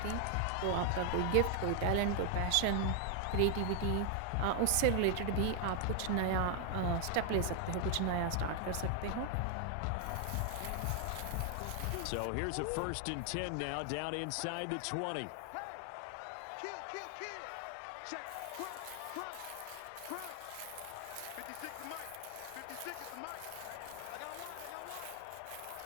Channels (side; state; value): both; different; correlation 0.00